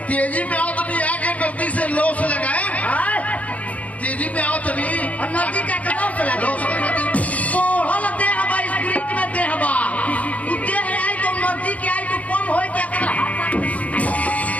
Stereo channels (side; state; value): right; late; 0.069 ms